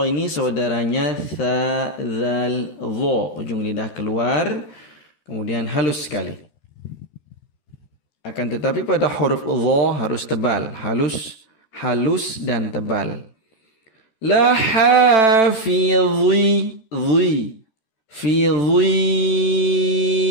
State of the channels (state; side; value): late; right; 13 ms